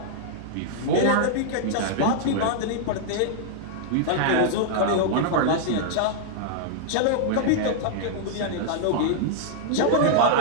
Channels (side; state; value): both; different; correlation -0.01